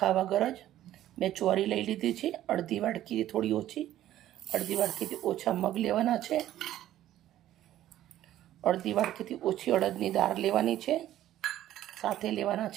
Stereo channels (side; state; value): left; quieter; 13.0 dB